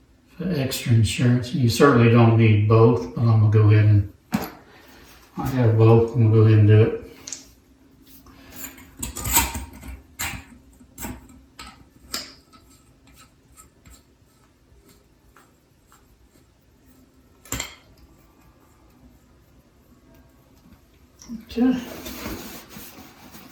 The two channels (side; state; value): both; identical; correlation 1.00